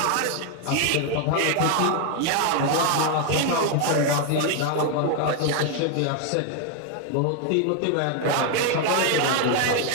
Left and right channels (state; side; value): different; both; correlation 0.01